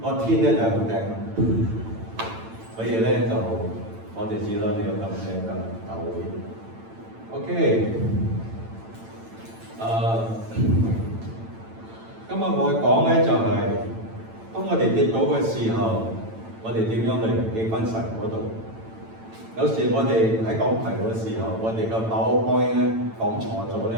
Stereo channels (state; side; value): late; left; 8.9 ms